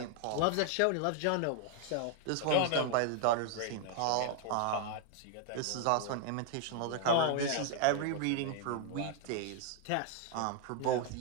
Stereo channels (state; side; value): different; both; correlation 0.00